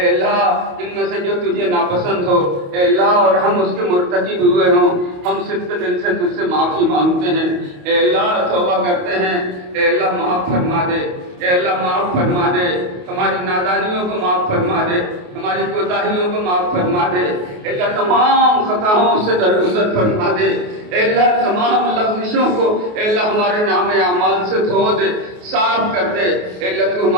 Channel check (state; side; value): late; left; 28 ms